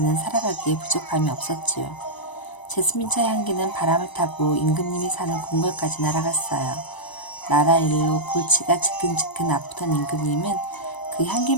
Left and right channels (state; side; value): late; right; 1.0 ms